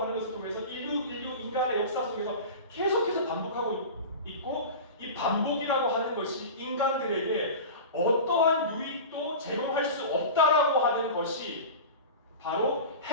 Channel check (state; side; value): inverted; both; correlation -0.31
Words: 하는 것을 통해서 인류 인간의 역사 속에서 계속해서 반복하고 있고, 이 반복이라고 하는 것이 인간들에게 어떠한 유익도 제공할 수 없다라고 하는 것이 바로